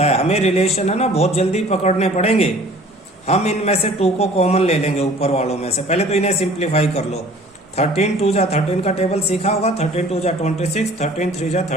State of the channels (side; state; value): both; normal; correlation 0.50